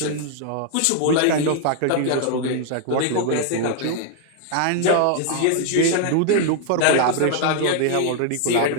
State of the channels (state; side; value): different; both; correlation 0.00